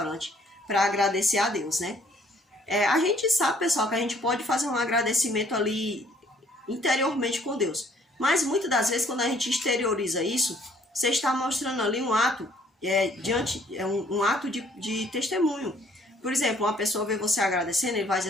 para agradecer a Deus, né? A gente sabe, pessoal, que a gente pode fazer um agradecimento ali interiormente com Deus. Mas muitas das vezes, quando a gente exterioriza isso, você está mostrando ali um ato, um ato de testemunho. Por exemplo, uma pessoa vê você agradecendo, ele vai dizer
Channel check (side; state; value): both; normal; correlation 0.61